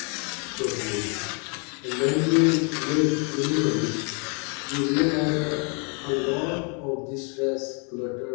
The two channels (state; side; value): quieter; right; 36.2 dB